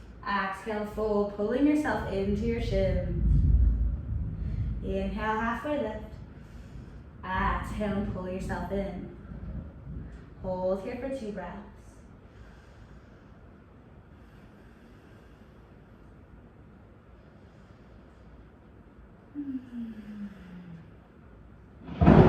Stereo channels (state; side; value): identical; both; correlation 1.00